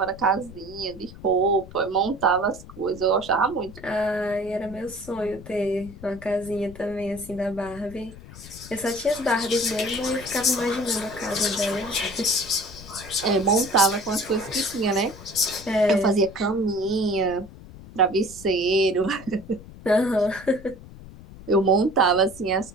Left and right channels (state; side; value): noise; left; rumble, 17 dB below the sound